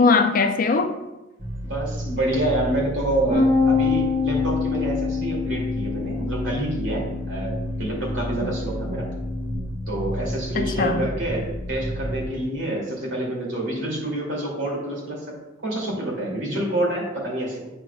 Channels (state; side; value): normal; both; correlation 0.50